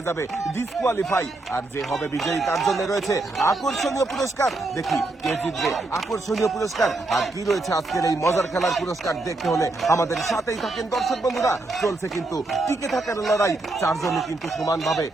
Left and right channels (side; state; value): left; quieter; 3.0 dB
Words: যাবে ডিসকোয়ালিফাই, আর যে হবে বিজয়ী তার জন্য রয়েছে আকর্ষণীয় পুরস্কার। দেখি কে জিতবে আকর্ষণীয় পুরস্কার আর কি রয়েছে আজকের এই মজার খেলার পুরস্কার দেখতে হলে আমাদের সাথেই থাকেন। দর্শক বন্ধুরা, চলছে কিন্তু টিকে থাকার লড়াই। চারজনই কিন্তু সমানভাবে